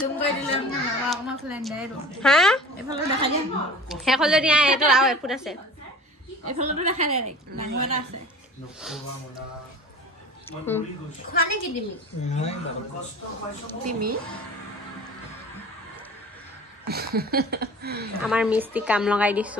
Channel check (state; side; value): normal; both; correlation 0.41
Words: জুম কৰি দিলে আমাৰ ফ্লেণ্ডাই হা এইফালে দেখাই দিয়া শেষ হ'ল যদি এইটো আৰু এফুট আছে এইফালেতো দেখাই দে ডাঙৰ এটা আছে খোৱা নেকি তুমি আমাৰ মিস্ত্ৰী কাম লগাই